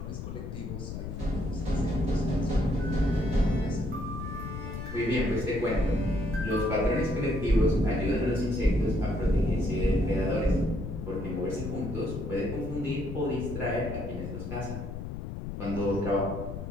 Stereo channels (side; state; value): left; noise; rumble, 7 dB below the sound